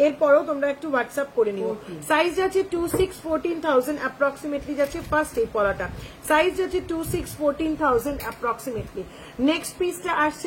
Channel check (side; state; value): both; identical; correlation 1.00